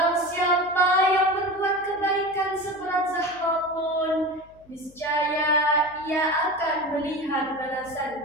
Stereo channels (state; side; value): noise; left; hum, 28 dB below the sound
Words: siapa yang berbuat kebaikan seberat zahra pun, niscaya ia akan melihat